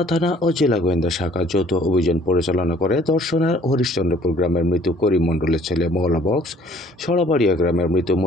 থানা ও জেলা গোয়েন্দা শাখা যৌথ অভিযান পরিচালনা করে দর্শনার হরিশ্চন্দ্রপুর গ্রামের মৃত করিম মণ্ডলের ছেলে মওলা বক্স, সরাবাড়িয়া গ্রামের মৃত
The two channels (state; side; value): normal; both; correlation 0.56